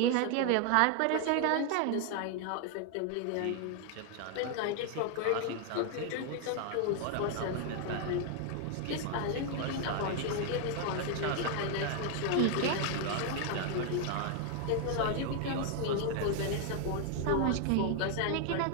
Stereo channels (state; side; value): different; both; correlation 0.00